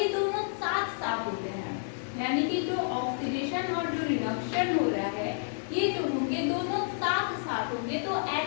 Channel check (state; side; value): silent; right; digital silence